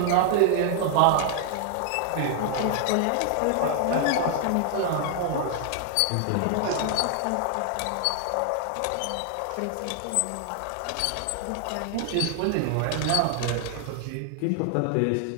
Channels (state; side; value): different; both; correlation 0.00